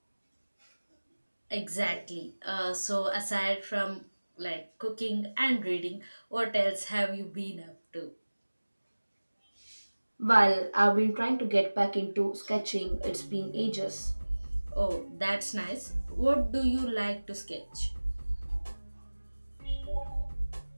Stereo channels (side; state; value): both; inverted; correlation -1.00